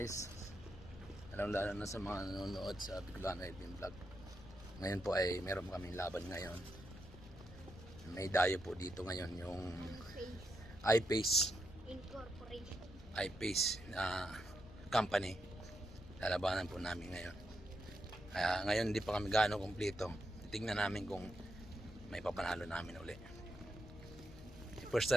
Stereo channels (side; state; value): left; noise; rumble, 16 dB below the sound